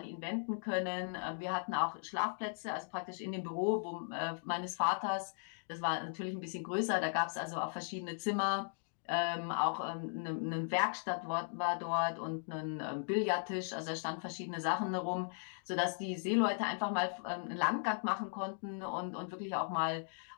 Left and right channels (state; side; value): silent; right; digital silence